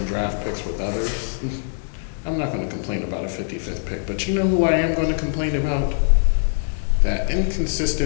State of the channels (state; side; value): silent; right; 64 dB below the other